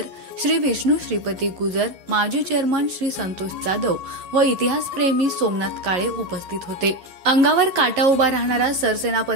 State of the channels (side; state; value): left; late; 11 ms